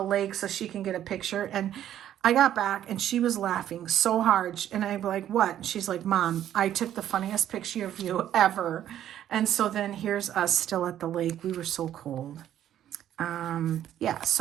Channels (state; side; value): quieter; left; 11.2 dB